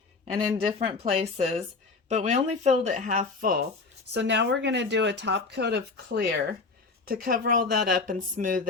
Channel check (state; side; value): quieter; right; 4.1 dB